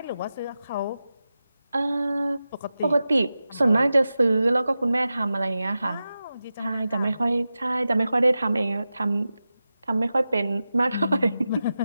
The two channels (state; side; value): inverted; both; correlation -0.93